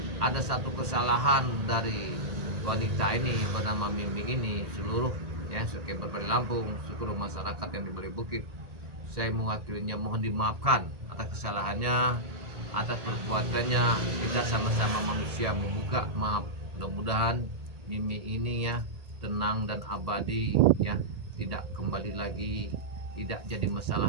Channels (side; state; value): left; late; 1.8 ms